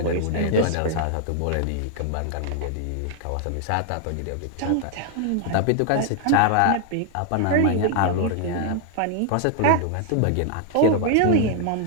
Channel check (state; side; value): different; both; correlation 0.00